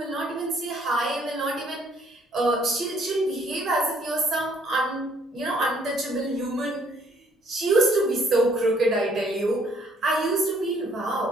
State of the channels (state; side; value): normal; both; correlation 0.64